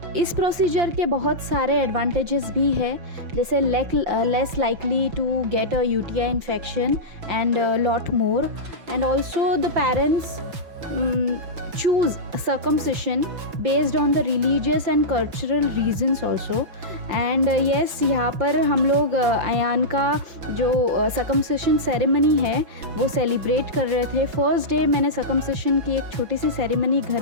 इस procedure के बहुत सारे advantages भी है, जैसे less likely to get a UTI infection and lot more, and also the parents choose circumcision based on the religious and cultural reasons also. And yes यहाँ पर हम लोग अयान का जो सर्कमसिशन सेरेमनी है वो सेलिब्रेट कर रहे थे. फर्स्ट डे मैंने सर्कमसिशन की एक छोटी सी सेरेमनी घर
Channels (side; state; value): left; late; 5.8 ms